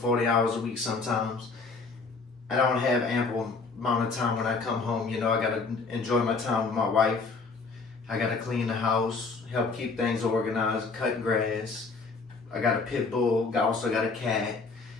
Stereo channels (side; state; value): right; quieter; 4.3 dB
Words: hours a week sometimes. I don't have ample amount of time when I come home. You know, I gotta enjoy my time with my wife. I gotta clean the house, help keep things organized, cut grass. I got a pit bull, I also got a cat.